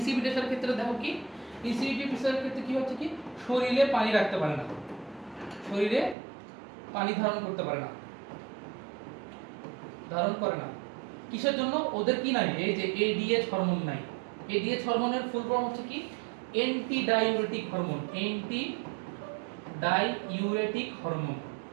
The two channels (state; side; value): drops out; left; at 6.2 s